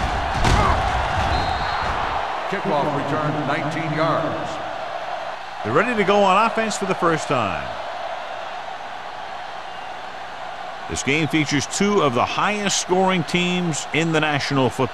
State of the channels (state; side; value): identical; both; correlation 1.00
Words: Kickoff return, 19 yards. They're ready to go on offense for the first time. This game features two of the highest scoring teams in the National